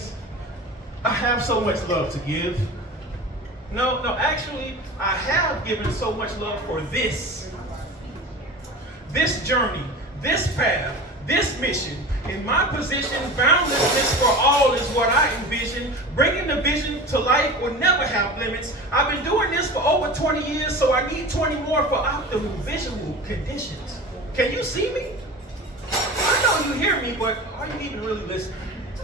I have so much love to give. No, actually, I have given so much love for this journey, this path, this mission. In my position, boundlessness for all is what I envision. Bringing the vision to life will never have limits. I've been doing this for over 20 years, so I need 20 more for optimal visual conditions. Can you see me? I know you hear me, but are you even really listening?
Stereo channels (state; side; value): normal; both; correlation 0.33